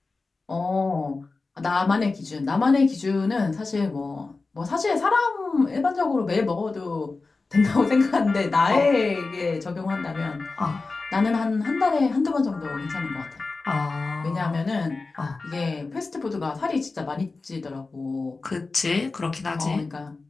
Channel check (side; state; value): right; quieter; 3.8 dB